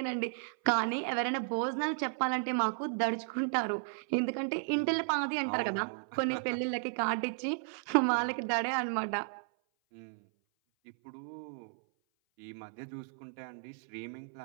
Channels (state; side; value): silent; left; 55 dB below the other